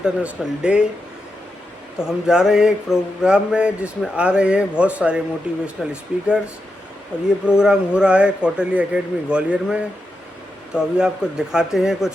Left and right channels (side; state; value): both; normal; correlation 0.87